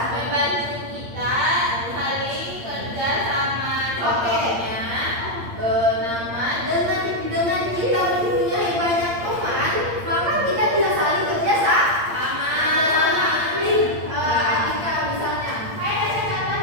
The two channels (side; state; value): left; late; 8.7 ms